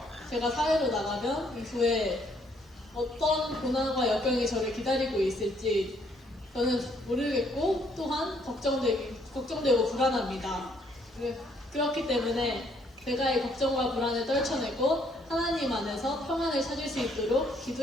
제가 사회로 나가면 이후에 어떤 고난과 역경이 저를 기다리고 있을지 저는 모르겠고 또한 걱정되고 불안합니다. 그렇기 때문에 제가 이 걱정과 불안을 떨쳐내고 하나님 안에서 평안을 찾을 수 있도록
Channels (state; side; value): normal; both; correlation 0.68